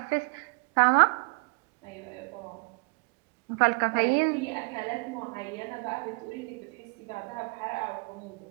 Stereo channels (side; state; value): left; quieter; 32.7 dB